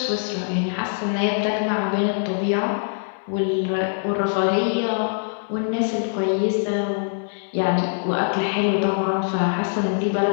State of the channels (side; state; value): right; silent; 63 dB below the other